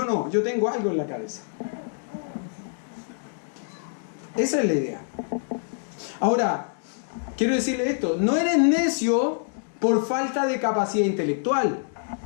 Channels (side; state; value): right; silent; digital silence